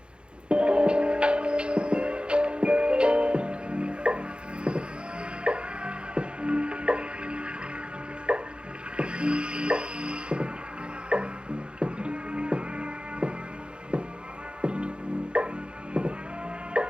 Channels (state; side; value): late; left; 0.055 ms